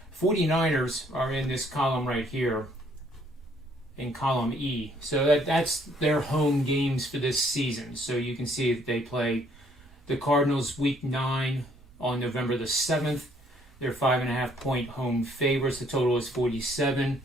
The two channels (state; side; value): noise; right; rumble, 25 dB below the sound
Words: 49ers are in this column right here, in column E. So that's their home games for this season. So you can see that they play the Cardinals week 9 on November the 7th. They're 5.5 point home favorites. The total is 47.